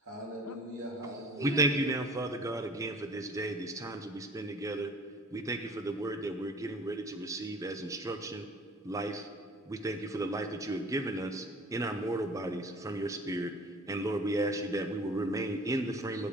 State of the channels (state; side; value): normal; both; correlation 0.48